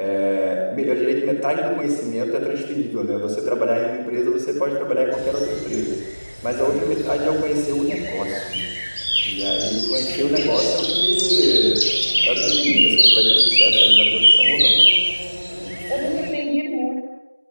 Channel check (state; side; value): inverted; both; correlation -1.00